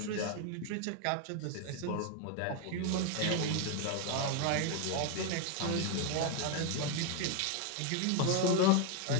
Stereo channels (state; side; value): different; both; correlation 0.01